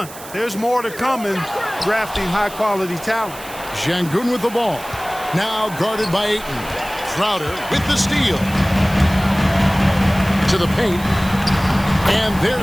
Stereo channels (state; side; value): noise; right; hiss, 16 dB below the sound